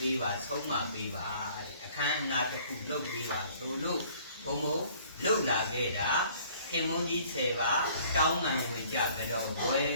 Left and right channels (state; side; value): inverted; both; correlation -0.55